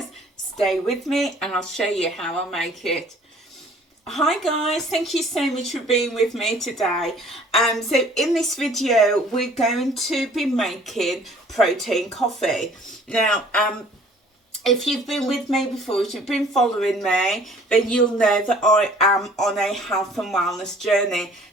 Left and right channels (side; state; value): both; normal; correlation 0.54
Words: Stay with me and I'll show you how I make it. Hi guys, thank you so much for being with me today. So in this video we're going to be making protein coffee. Now if you've been with me before, if you've been following me, then you'll know that I am on a health and wellness journey.